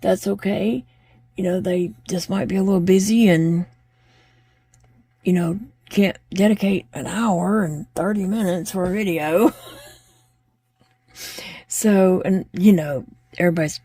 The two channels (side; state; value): both; identical; correlation 1.00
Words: that's okay. You know, they just might be a little busy and, you know, can't dedicate an hour and 30 minutes for a video. So, and, you know,